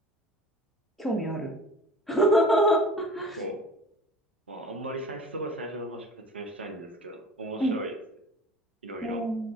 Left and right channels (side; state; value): both; normal; correlation 0.42